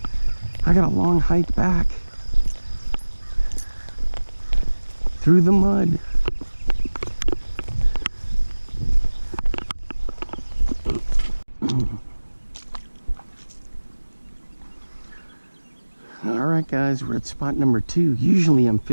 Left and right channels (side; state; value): both; inverted; correlation -1.00